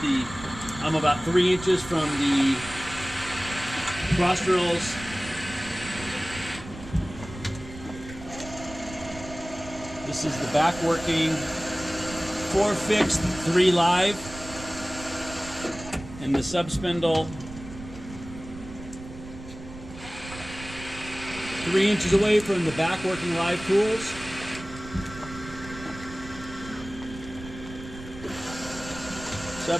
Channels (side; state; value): right; noise; rumble, 14 dB below the sound